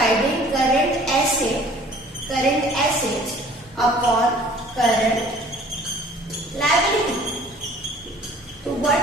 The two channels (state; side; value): normal; both; correlation 0.51